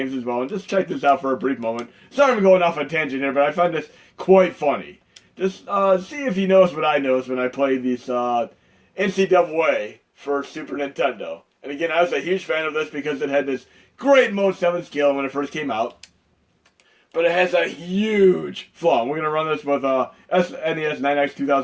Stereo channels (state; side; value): identical; both; correlation 1.00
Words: as well. And just check this out for a brief moment. Sorry I'm going off on a tangent here, but I find this quite funny. Just see if you notice what I notice when I play these NCAA for Super Nintendo. And again, I was a huge fan of this because it had this great Mode 7 scale when it first came out. But it has a huge flaw. We're going to run this with SNES 9X